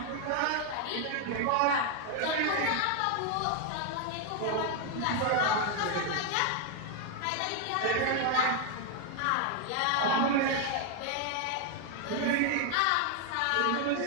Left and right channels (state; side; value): different; both; correlation 0.01